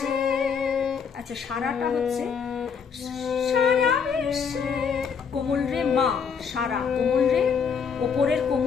আচ্ছা সারাটা হচ্ছে সারা বিশ্বে কোমল রে মা, সারা কোমল রে, ওপরের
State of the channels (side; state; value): right; quieter; 6.4 dB